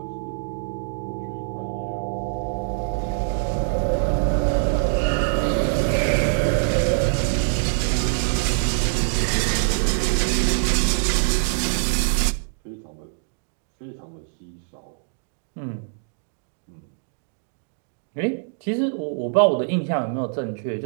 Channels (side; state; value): left; silent; digital silence